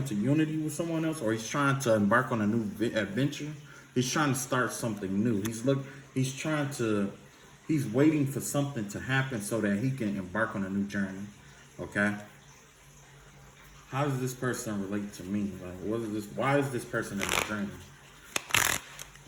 unity with someone else, or he's trying to embark on a new adventure. He's trying to start something new. He's waiting for something to happen so that he can embark on a new journey. Okay? How does this person relate to me? Like, why is this person in the dream?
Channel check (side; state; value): both; identical; correlation 1.00